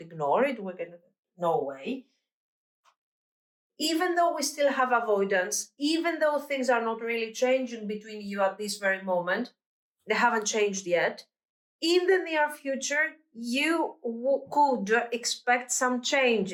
ignore it. No way. Even though we still have avoidance, even though things are not really changing between you at this very moment, they haven't changed yet. In the near future, you could expect some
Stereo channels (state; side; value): identical; both; correlation 1.00